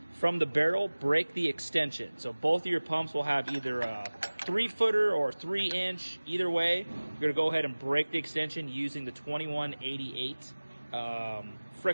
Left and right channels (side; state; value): both; inverted; correlation -1.00